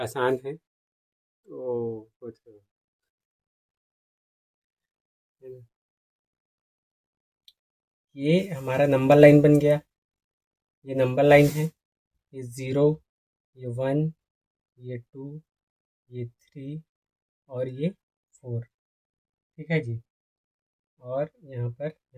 है। तो कुछ ये हमारा नंबर लाइन बन गया, ये नंबर लाइन है, ये 0, ये 1, ये 2, ये 3 और ये 4। ठीक है जी, और यहाँ पर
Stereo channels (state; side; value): identical; both; correlation 1.00